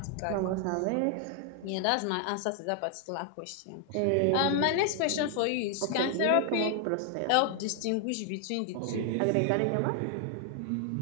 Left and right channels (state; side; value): different; both; correlation 0.00